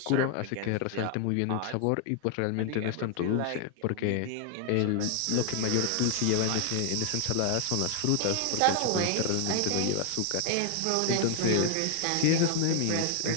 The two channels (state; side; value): different; both; correlation 0.00